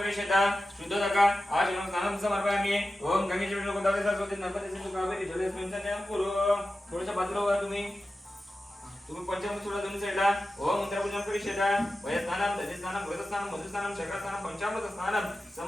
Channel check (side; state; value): both; normal; correlation 0.93